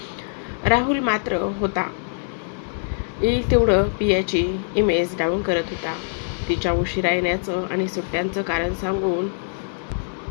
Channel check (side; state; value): right; silent; digital silence